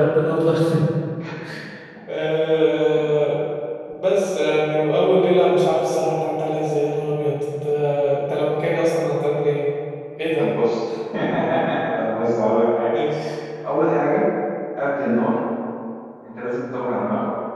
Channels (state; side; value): identical; both; correlation 1.00